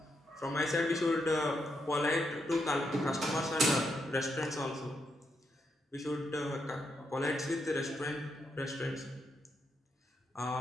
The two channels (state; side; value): normal; both; correlation 0.81